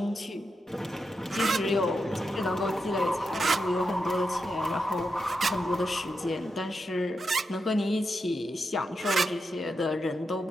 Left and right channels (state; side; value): normal; both; correlation 0.86